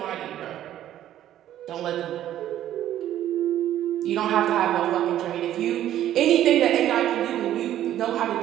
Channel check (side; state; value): left; quieter; 12.1 dB